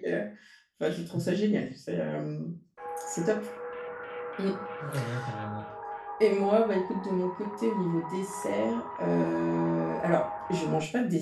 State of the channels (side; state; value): both; identical; correlation 1.00